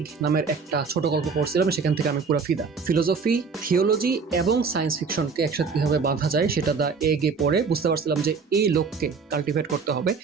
নামের একটা ছোট গল্প পড়ছিলাম, সেখান থেকে আমি পুরো ফিদা। ফিলোসফি, থিওলজি এবং সায়েন্স ফিকশনকে একসাথে কীভাবে বাঁধা যায় সেটা দ্য এগে পড়ে বুঝতে পারছিলাম যে এই লোককে কাল্টিভেট করতে হবে।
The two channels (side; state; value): left; quieter; 5.2 dB